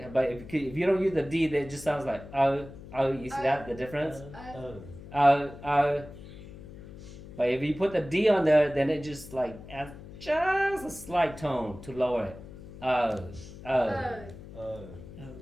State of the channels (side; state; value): left; noise; hum, 15 dB below the sound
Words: But if you don't use the D, then it just sounds like you see that the difference? But if you put the D on there, then it just like adds just a slight tone to lower it.